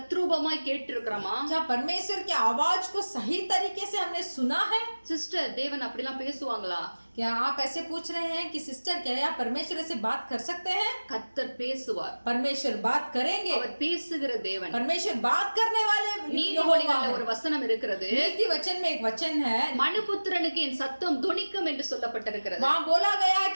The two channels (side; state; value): both; inverted; correlation -1.00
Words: கேட்டிருக்கிறோமா? क्या परमेश्वर की आवाज को सही तरीके से हमने सुना है? சிஸ்டர், தேவன் அப்படிலாம் பேசுவாங்களா? क्या आप ऐसे पूछ रहे हैं कि सिस्टर क्या आप परमेश्वर से बात कर सकते हैं? கர்த்தர் பேசுவார். परमेश्वर बात करेंगे. அவர் பேசுகிற தேவன். परमेश्वर बात करने वाले நீதிமொழிகள்ல ஒரு வசனம் இருக்கிறது. नीति वचन में एक वचन है, மனுபுத்திரனுக்கு என் சத்தம் துணிக்கும் என்று சொல்லப்பட்டிருக்கிறது. वहाँ बोला गया है